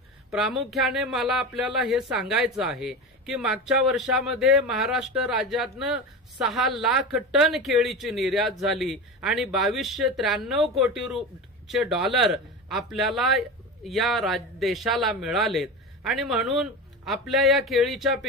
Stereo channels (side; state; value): both; normal; correlation 0.26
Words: प्रामुख्याने मला आपल्याला हे सांगायचं आहे की मागच्या वर्षामध्ये महाराष्ट्र राज्यातनं 6 लाख टन केळीची निर्यात झाली आणि 2293 कोटी डॉलर आपल्याला या देशाला मिळालेत आणि म्हणून आपल्या या केळीच्या